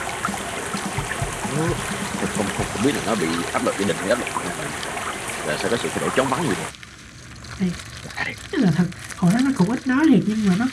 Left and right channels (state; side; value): identical; both; correlation 1.00